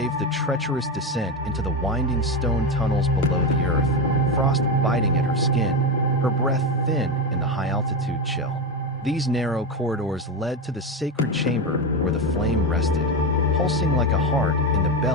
the treacherous descent into the winding stone tunnels below the earth, frost biting at her skin, her breath thin in the high-altitude chill. These narrow corridors led to the sacred chamber where the flame rested, pulsing like a heart in the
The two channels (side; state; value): both; normal; correlation 0.15